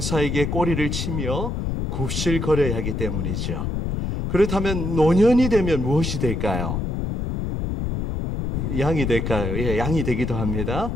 꼬리를 치며 굽실거려야 하기 때문이죠. 그렇다면 노년이 되면 무엇이 될까요? 양이 될까요? 예, 양이 되기도 합니다.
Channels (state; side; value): noise; left; rumble, 2 dB below the sound